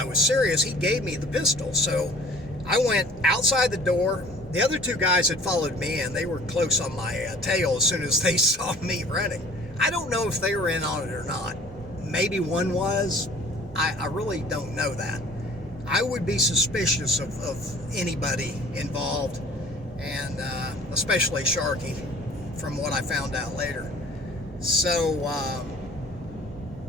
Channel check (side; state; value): both; normal; correlation 0.49